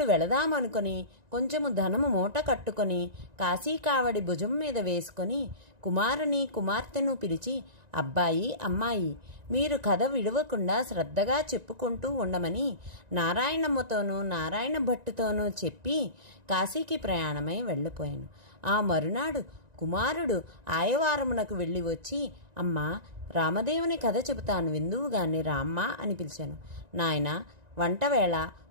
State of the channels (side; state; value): left; late; 1.9 ms